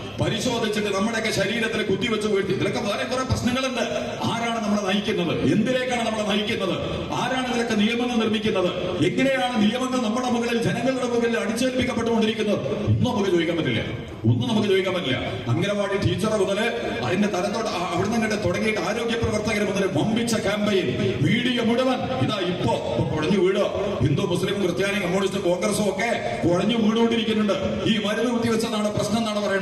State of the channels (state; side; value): identical; both; correlation 1.00